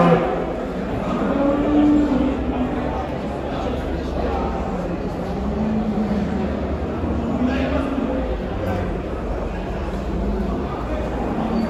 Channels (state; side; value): identical; both; correlation 1.00